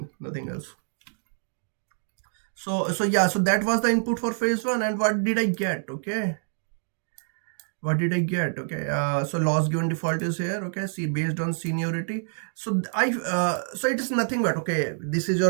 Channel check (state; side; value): silent; left; digital silence